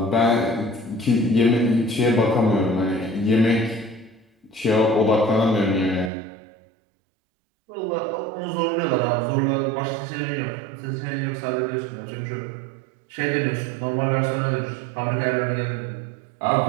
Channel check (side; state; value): left; drops out; at 6.1 s